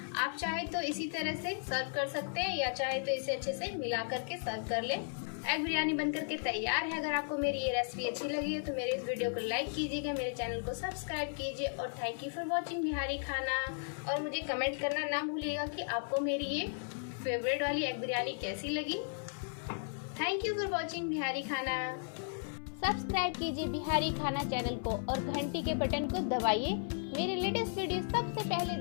आप चाहे तो इसी तरह से सर्व कर सकते हैं या चाहे तो इसे अच्छे से मिला करके सर्व कर लें। एग बिरयानी बनकर के तैयार है। अगर आपको मेरी ये रेसिपी अच्छी लगी है तो मेरे इस वीडियो को लाइक कीजिएगा, मेरे चैनल को सब्सक्राइब कीजिए और thank you for watching Bihari खाना। और मुझे कमेंट करना ना भूलिएगा कि आपको मेरी ये फेवरेट वाली एग बिरयानी कैसी लगी। Thank you for watching Bihari खाना। सब्सक्राइब कीजिए बिहारी खाना चैनल को और घंटी के बटन को दबाइए मेरे लेटेस्ट वीडियो सबसे पहले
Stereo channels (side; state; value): right; silent; 54 dB below the other